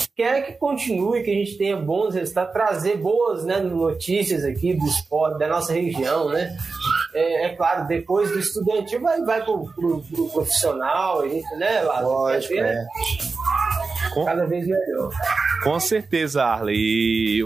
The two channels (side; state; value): left; quieter; 4.2 dB